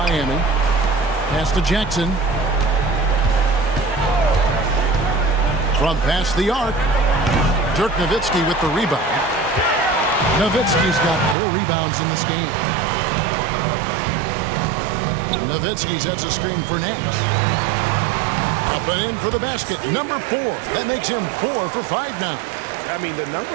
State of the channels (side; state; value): left; drops out; at 11.4 s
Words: Pass to Jackson. From past the arc. Dirk Nowitzki with the rebound. Nowitzki's got 4 rebounds in this game. Nowitzki sets a screen for Nash. Up and in for the basket. Number 4. That makes him 4 for 5 now. I mean, the number